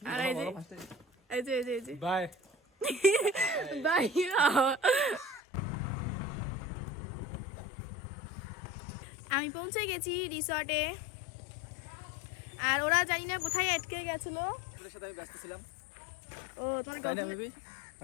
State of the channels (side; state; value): right; drops out; at 5.4 s